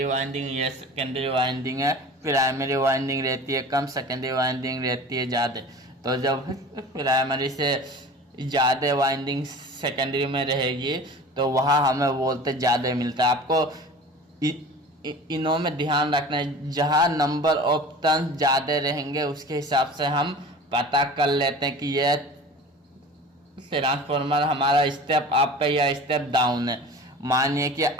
वाइंडिंग, ये सेकेंडरी वाइंडिंग है। प्राइमरी वाइंडिंग रहती है कम, सेकेंडरी वाइंडिंग रहती है ज़्यादा। तो जब प्राइमरी से ज़्यादा वाइंडिंग सेकेंडरी में रहेगी तो वहाँ हमें वोल्टेज ज़्यादा मिलता है। आपको इनों में ध्यान रखना है, जहाँ नंबर ऑफ टर्न्स ज़्यादा रहेंगे उसके हिसाब से हम पता कर लेते हैं कि यह ट्रांसफॉर्मर हमारा स्टेप अप है या स्टेप डाउन है। मानिए कि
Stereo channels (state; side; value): normal; both; correlation 0.39